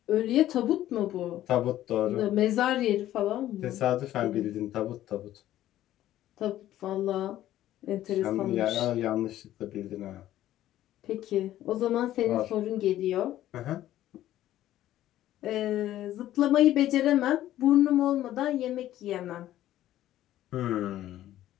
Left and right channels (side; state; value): right; quieter; 13.4 dB